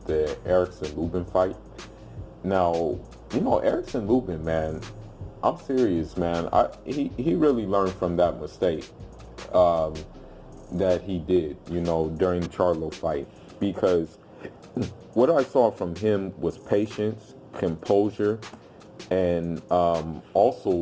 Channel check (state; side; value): identical; both; correlation 1.00